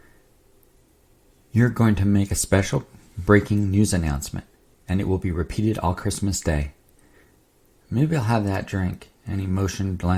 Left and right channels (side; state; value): both; identical; correlation 1.00